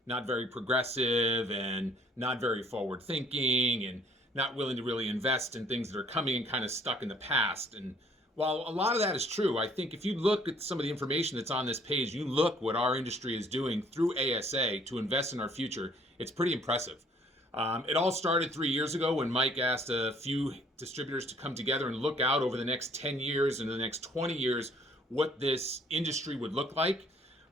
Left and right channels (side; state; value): both; normal; correlation 0.60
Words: not very progressive and not very forward thinking and not willing to really invest in things that are coming and kind of stuck in the past. And while a lot of that is true, I think if you look at some of the information that's on this page, you look what our industry is doing through ASA to invest in our future, it's pretty impressive. It all started 3 years ago when Mike asked a few distributors to come together and look out over the next 10 years and the next 20 years what this industry would look like.